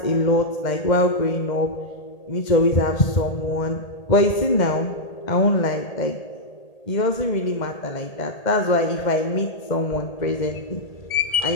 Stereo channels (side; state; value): right; late; 1.8 ms